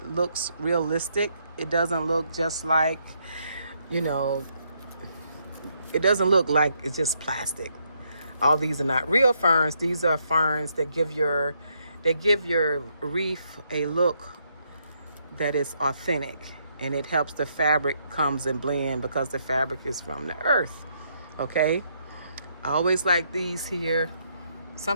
looks realistic. It doesn't look just like, it doesn't look like it's just plastic. All these are not real ferns. These are ferns that give your wreath a look that is authentic, and it helps the fabric comes and blend because the fabric is from the earth. Okay? I always like these here.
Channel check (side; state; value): both; inverted; correlation -0.74